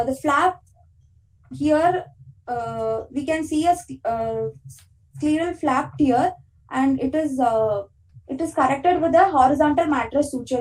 flap here, we can see a scleral flap tear, and it is corrected with a horizontal mattress suture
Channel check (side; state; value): both; identical; correlation 1.00